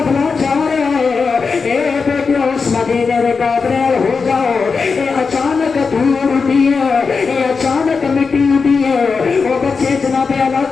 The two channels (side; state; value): right; quieter; 5.0 dB